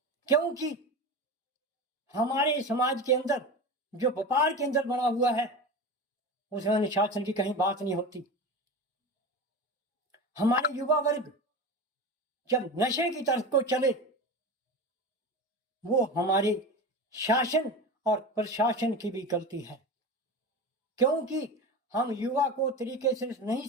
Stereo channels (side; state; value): both; normal; correlation 0.26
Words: क्योंकि हमारे समाज के अंदर जो व्यापार के अंदर बना हुआ है, उसमें अनुशासन की कहीं बात नहीं होती। हमारे युवा वर्ग जब नशे की तरफ को चले, वो हमारे शासन और प्रशासन की भी गलती है, क्योंकि हम युवा को तरीके से नहीं